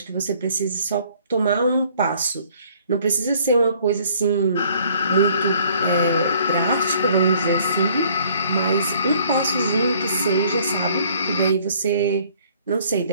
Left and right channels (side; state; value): both; inverted; correlation -0.59